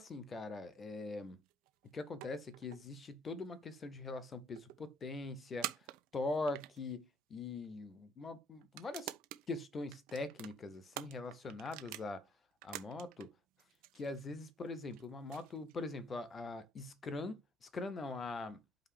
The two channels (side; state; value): both; normal; correlation 0.63